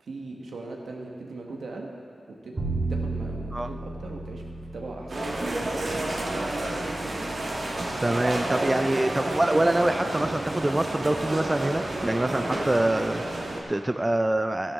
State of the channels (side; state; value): both; normal; correlation 0.97